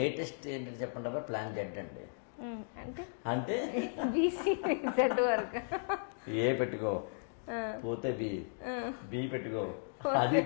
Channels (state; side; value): silent; right; digital silence